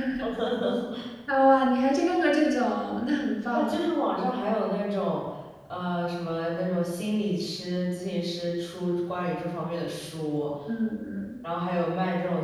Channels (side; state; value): both; identical; correlation 1.00